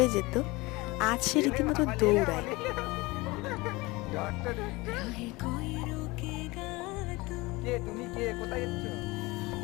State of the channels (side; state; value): right; quieter; 22.8 dB